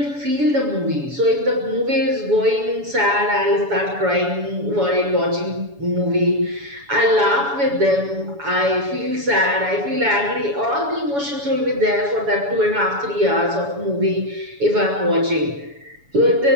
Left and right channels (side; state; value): left; late; 7.1 ms